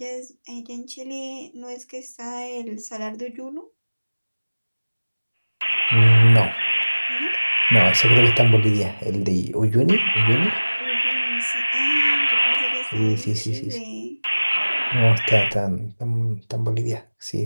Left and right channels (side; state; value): both; inverted; correlation -1.00